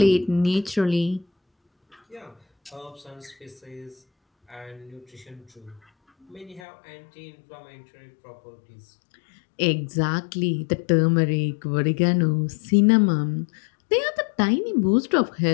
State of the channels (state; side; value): drops out; right; at 6.6 s